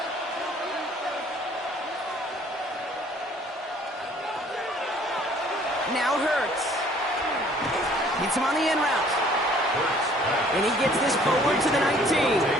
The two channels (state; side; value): normal; both; correlation 0.57